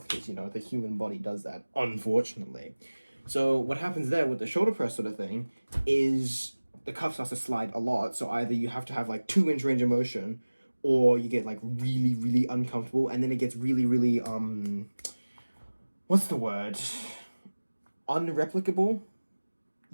because the human body does that, unfortunately. So what happens there with the shoulder press sort of thing is the cuff starts to slide a lot. So either you have to have like 2-inch range of motion, or you get like really, really uncomfortable, and then it gets really, really what's the word? Unreplicable.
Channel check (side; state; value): both; inverted; correlation -1.00